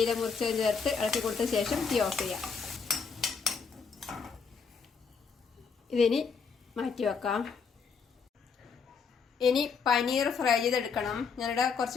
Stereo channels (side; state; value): right; quieter; 5.6 dB